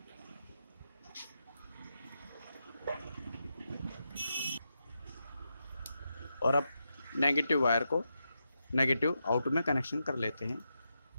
और अब नेगेटिव वायर को नेगेटिव आउट में कनेक्शन कर लेते हैं।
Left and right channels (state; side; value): inverted; both; correlation -0.86